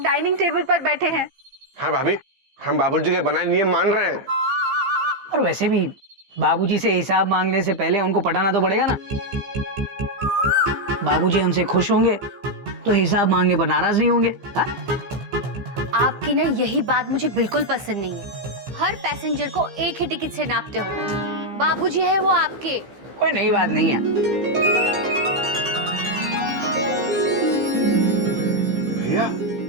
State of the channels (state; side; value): late; left; 15 ms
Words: डाइनिंग टेबल पर बैठे हैं। हाँ भाभी, हम बाबूजी के बनाए नियम मान रहे हैं। और वैसे भी बाबूजी से हिसाब मांगने से पहले उनको पटाना तो पड़ेगा ना। बाबूजी हमसे खुश होंगे तो हिसाब मांगने पर नाराज नहीं होंगे। हा? आपकी ना यही बात मुझे बिल्कुल पसंद नहीं है। हर पैसेंजर को एक ही टिकट से नापते हो। बाबूजी है वो आपके। कोई नई बात नहीं है। भैया,